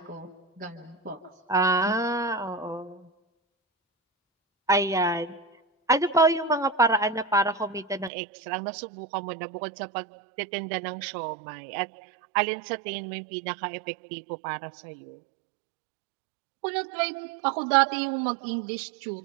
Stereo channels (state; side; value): drops out; left; at 8.1 s